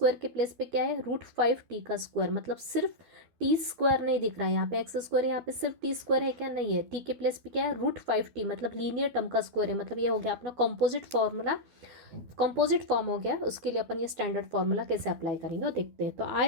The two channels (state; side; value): late; left; 12 ms